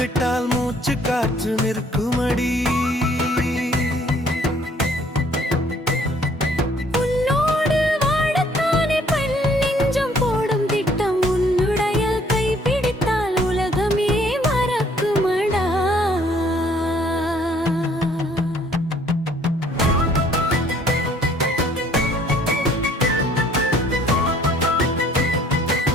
மூச்சு காற்று நிற்குமடி.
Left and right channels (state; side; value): normal; both; correlation 0.60